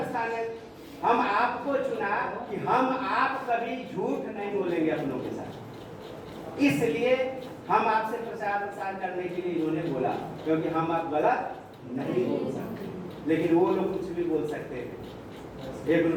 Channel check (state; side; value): identical; both; correlation 1.00